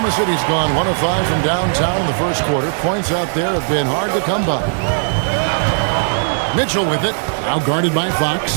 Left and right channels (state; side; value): silent; left; digital silence